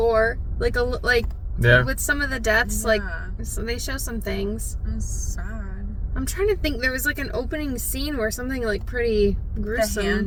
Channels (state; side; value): identical; both; correlation 1.00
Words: Yeah. with some of the deaths. So they show some things. It was sad. I'm trying to think. There was an opening scene where something pretty gruesome. The